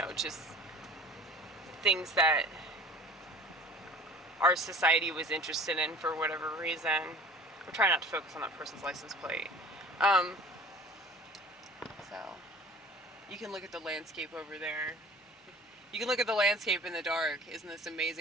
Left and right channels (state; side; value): normal; both; correlation 0.45